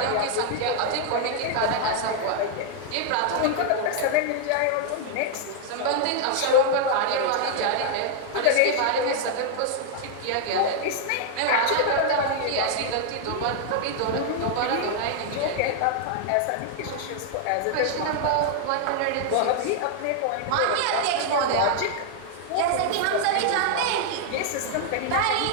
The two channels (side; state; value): both; different; correlation 0.00